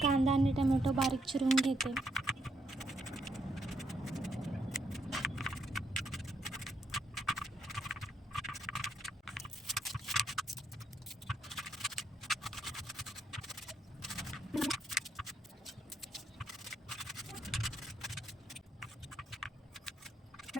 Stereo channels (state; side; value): normal; both; correlation 0.75